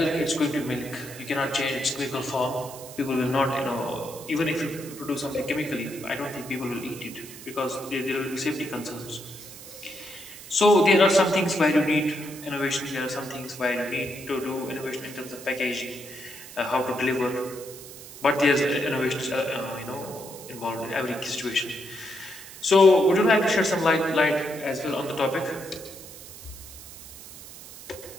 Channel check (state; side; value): noise; right; hiss, 15 dB below the sound